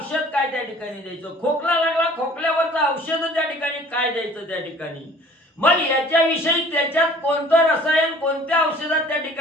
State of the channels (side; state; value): both; normal; correlation 0.51